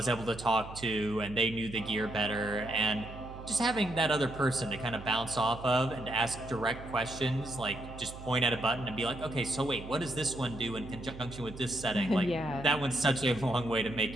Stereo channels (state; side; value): noise; right; hum, 13 dB below the sound